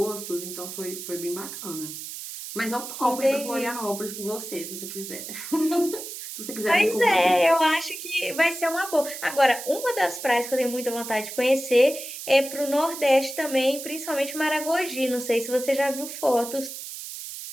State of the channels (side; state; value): right; noise; hiss, 9 dB below the sound